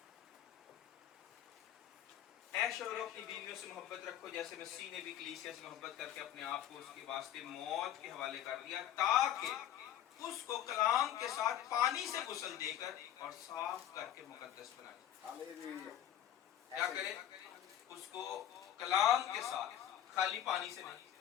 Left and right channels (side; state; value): right; quieter; 11.1 dB